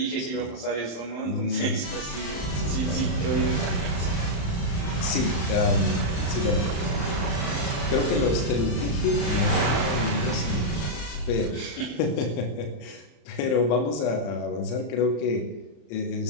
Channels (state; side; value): late; right; 35 ms